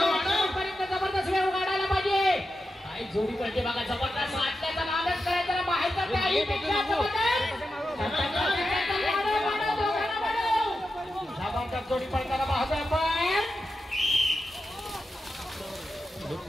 पर्यंत जबरदस्त वेग काढायला पाहिजे. काय जोडी पडते बघा. जबरदस्त आटल्याचा लालच करायचा बाहेरचा त्याहीपेक्षा जबरदस्त जोडी पडताना पाहतोय आपण.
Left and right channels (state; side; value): normal; both; correlation 0.90